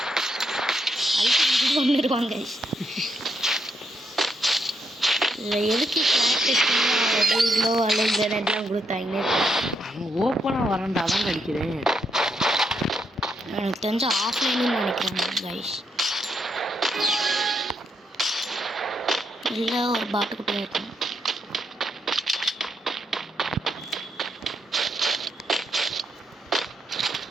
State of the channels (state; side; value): normal; both; correlation 0.78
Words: அடிக்க கொண்டுருவாங்க. இல்லை எதுக்கு கிளாஸ் அல்லது கொடுத்தாங்க. அவன் ஓப்பனாக வரண்டா தான் அடிக்கிறேன். எனக்கு தெரிஞ்ச ஆஃப்லைன்னு நினைக்கிறேன் கைஸ். இல்லை ஒரு பாட்டுக்குட்டியாக இருக்கும்.